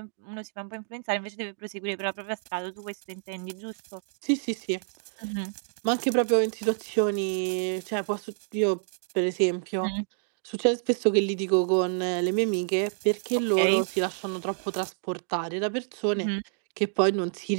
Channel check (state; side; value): silent; left; digital silence